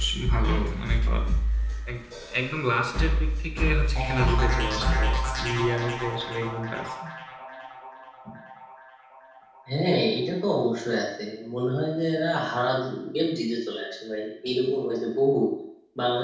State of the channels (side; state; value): both; identical; correlation 1.00